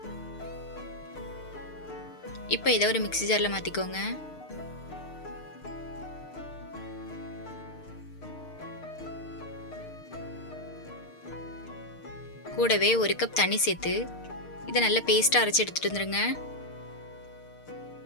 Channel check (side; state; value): right; late; 6.6 ms